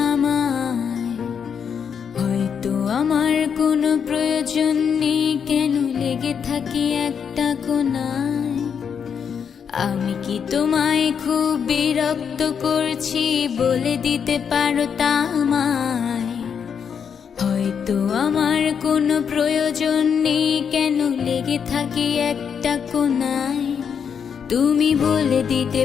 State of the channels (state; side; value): quieter; right; 7.2 dB